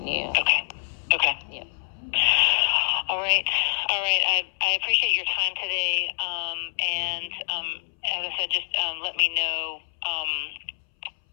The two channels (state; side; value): silent; right; 61 dB below the other